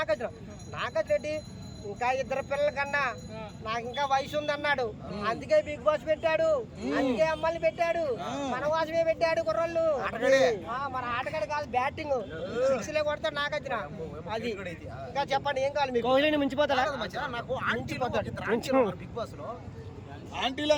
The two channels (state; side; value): identical; both; correlation 1.00